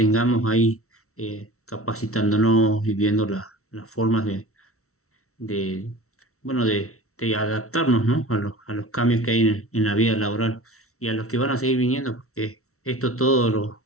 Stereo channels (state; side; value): late; right; 0.63 ms